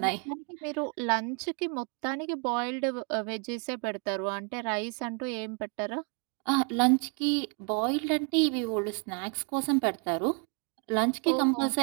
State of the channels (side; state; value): left; quieter; 38.4 dB